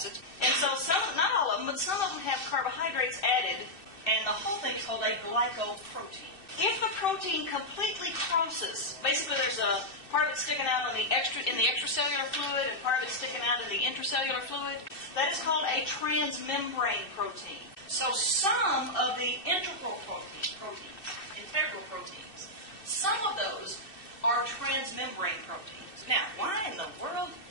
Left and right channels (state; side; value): late; right; 2.6 ms